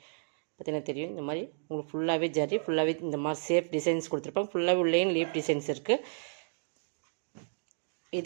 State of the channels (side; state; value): left; silent; digital silence